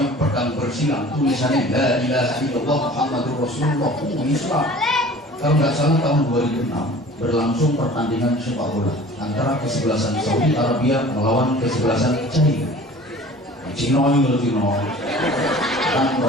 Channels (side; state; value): both; normal; correlation 0.45